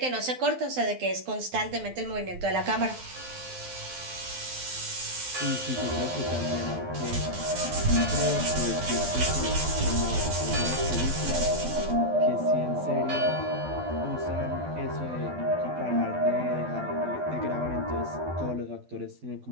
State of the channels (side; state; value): left; late; 12 ms